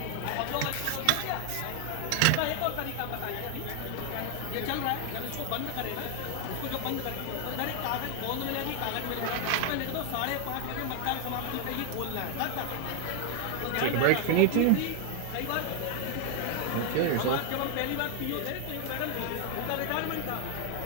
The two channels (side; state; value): both; different; correlation 0.00